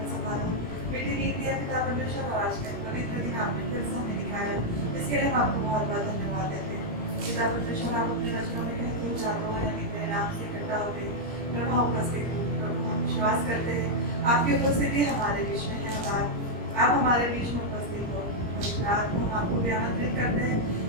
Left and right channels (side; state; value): left; late; 17 ms